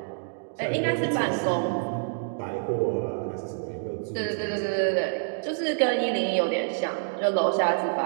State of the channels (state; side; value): silent; left; digital silence